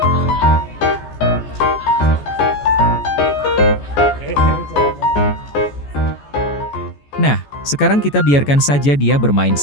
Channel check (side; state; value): right; late; 14 ms